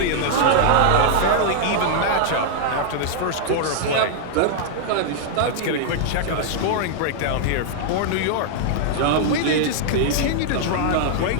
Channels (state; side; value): different; both; correlation -0.01